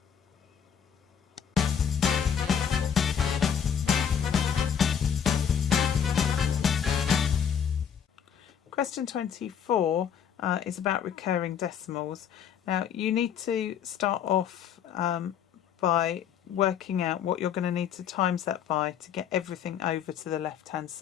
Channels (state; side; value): quieter; right; 8.1 dB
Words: Question 24 is about recurring decimals. Now you need to start off by working out what you're going to need to times that by to get everything over to the left hand